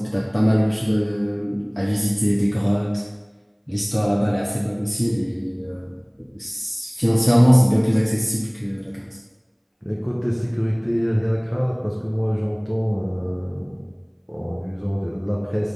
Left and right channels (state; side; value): identical; both; correlation 1.00